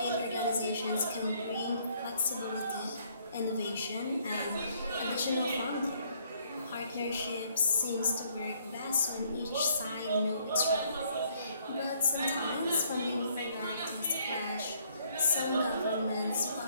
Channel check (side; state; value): both; inverted; correlation -0.66